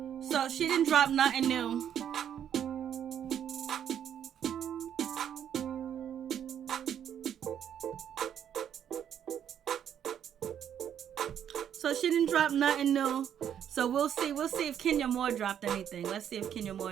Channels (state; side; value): quieter; left; 9.3 dB